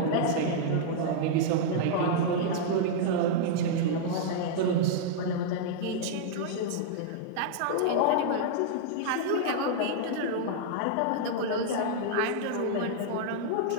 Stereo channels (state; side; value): different; both; correlation -0.01